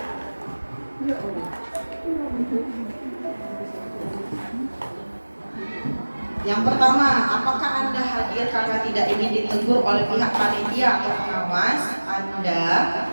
Yang pertama, apakah Anda hadir karena tidak ingin ditegur oleh pihak panitia atau pengawas Anda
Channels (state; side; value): inverted; both; correlation -1.00